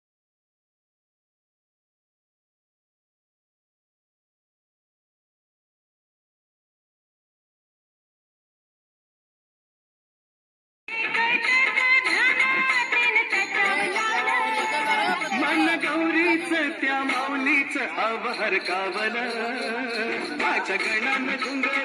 त्या माऊलीच अवहर कावल माझ्या गणाने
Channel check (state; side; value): identical; both; correlation 1.00